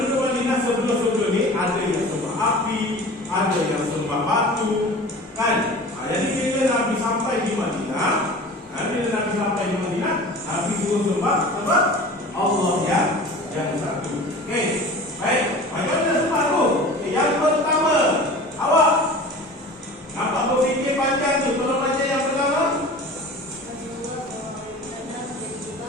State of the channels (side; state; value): both; normal; correlation 0.39